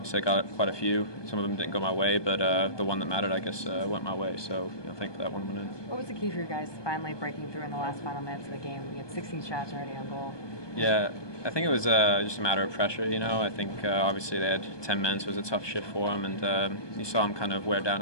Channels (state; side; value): late; right; 1.2 ms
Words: I got quite a few. Some of them didn't go my way, but the one that mattered, I guess, went my way. So you know, thankfully that one went in. What was the key for you guys finally breaking through in the last final minutes of the game? You had 16 shots already on goal. Yeah, I think it was just a matter of pressure. You know, I think obviously they had 10 men, so it was a tough shift for them, and you saw them kind of wear down